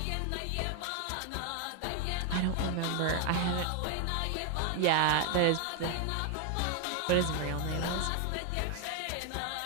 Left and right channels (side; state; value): both; different; correlation 0.00